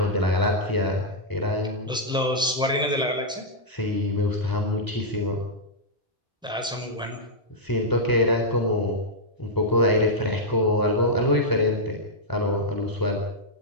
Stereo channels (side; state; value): both; normal; correlation -0.06